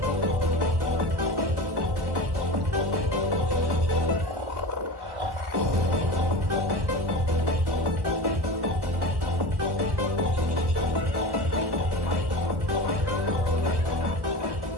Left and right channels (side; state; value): left; late; 1.1 ms